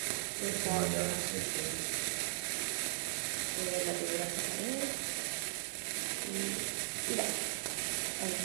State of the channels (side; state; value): left; silent; 53 dB below the other